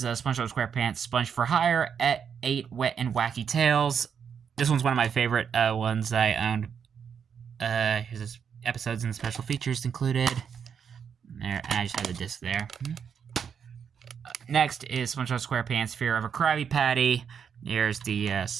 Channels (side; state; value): left; quieter; 7.2 dB